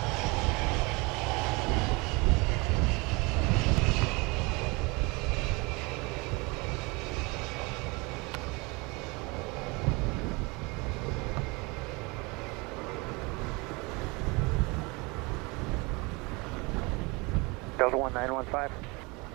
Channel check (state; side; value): quieter; left; 26.7 dB